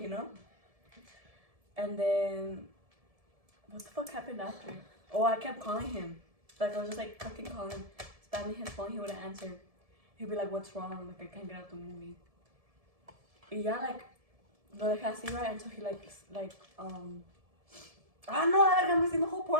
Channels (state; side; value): late; left; 1.7 ms